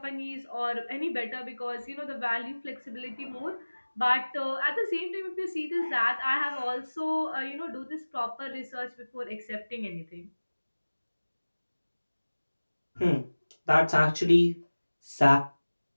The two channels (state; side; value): inverted; both; correlation -1.00